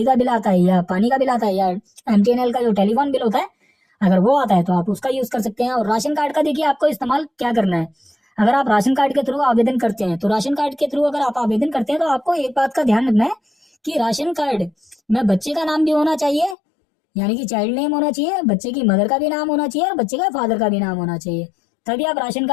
का बिल आता है या पानी का बिल आता है या एमटीएनएल का जो टेलीफोन बिल होता है अगर वो आता है तो आप उसका यूज कर सकते हैं। और राशन कार्ड का देखिए आपको इस्तेमाल क्या करना है, अगर आप राशन कार्ड के थ्रू आवेदन करते हैं तो राशन कार्ड के थ्रू अगर आप आवेदन करते हैं तो आपको एक बात का ध्यान रखना है कि राशन कार्ड में बच्चे का नाम भी होना चाहिए, यानी कि चाइल्ड नेम होना चाहिए, बच्चे की मदर का भी नाम होना चाहिए और बच्चे का फादर का भी नाम होना चाहिए, तभी आप राशन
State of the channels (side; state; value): right; drops out; at 16.6 s